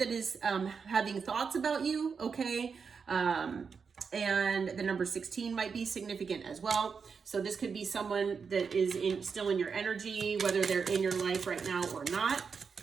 is having thoughts about you, okay? And the number 16 might be significant as well. So this could be someone that is still in your energy, whether they're in your life right now or not.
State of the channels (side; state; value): left; quieter; 5.7 dB